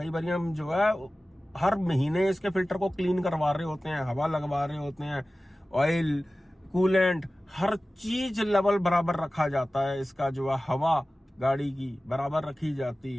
बार हम जो है हर महीने इसके फिल्टर को क्लीन करवा रहे होते हैं, हवा लगवा रहे होते हैं, ऑयल कूलेंट हर चीज लेवल बराबर रखा जाता है। इसका जो है हवा गाड़ी की बराबर रखी जाती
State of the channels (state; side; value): normal; both; correlation 0.96